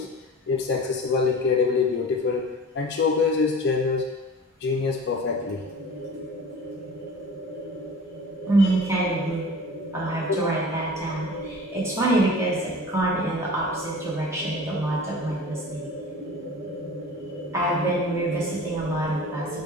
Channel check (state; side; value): normal; both; correlation 0.40